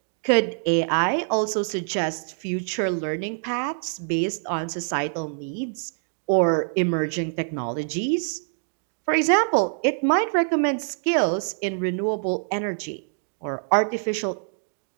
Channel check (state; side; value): silent; left; digital silence